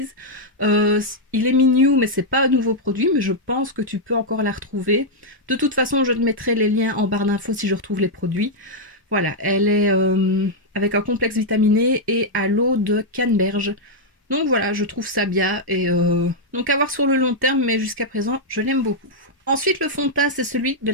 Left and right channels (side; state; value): both; normal; correlation -0.04